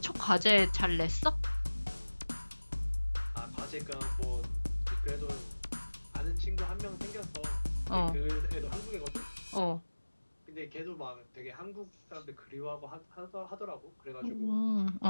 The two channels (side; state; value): both; inverted; correlation -1.00